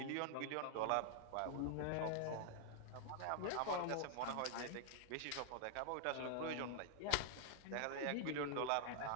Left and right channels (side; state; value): both; different; correlation 0.00